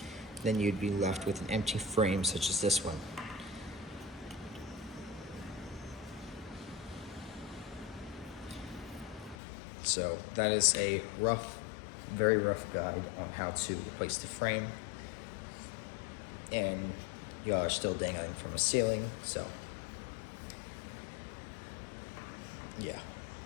Then you'd be left with an empty frame such as this one. So that is a rough, very rough guide on how to replace the frame. And y'all are still dangling from a ceiling, so yeah.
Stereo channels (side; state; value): right; drops out; at 9.3 s